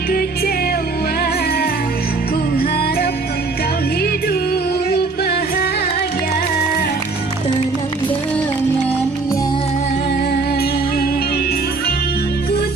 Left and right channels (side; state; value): left; quieter; 3.9 dB